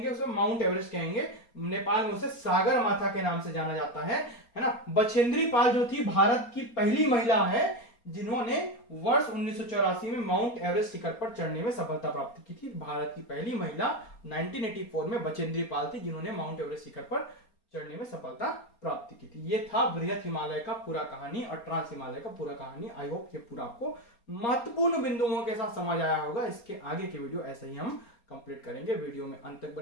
उसे माउंट एवरेस्ट कहेंगे। नेपाल में उसे सागर माथा के नाम से जाना जाता है ना। बछेंद्री पाल जो थी भारत की पहली महिला है जिन्होंने वर्ष 1984 में माउंट एवरेस्ट शिखर पर चढ़ने में सफलता प्राप्त की थी। भारत की पहली महिला 1984 में बछेंद्री पाल थी जिन्होंने माउंट एवरेस्ट शिखर पर चढ़ने में सफलता प्राप्त की थी। ये था वृहद हिमालय का पूरा कहानी और ट्रांस हिमालय का पूरा कहानी। आई होप ये पूरा आपको महत्वपूर्ण बिंदुओं के साथ समझ आया होगा। इसके आगे के वीडियो ऐसे ही हम कंप्लीट करेंगे। वीडियो में अंत तक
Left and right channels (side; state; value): right; late; 4.3 ms